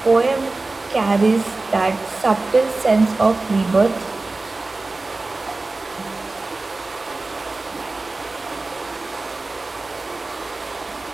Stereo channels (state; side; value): quieter; left; 3.3 dB